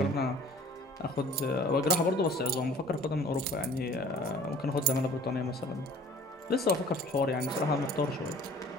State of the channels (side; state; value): both; normal; correlation 0.49